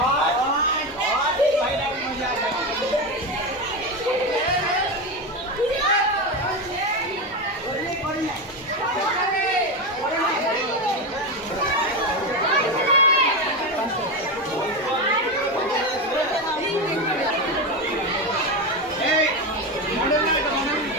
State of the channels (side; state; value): both; normal; correlation 0.15